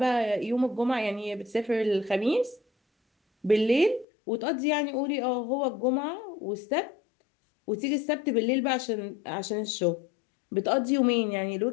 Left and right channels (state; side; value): drops out; right; at 4.0 s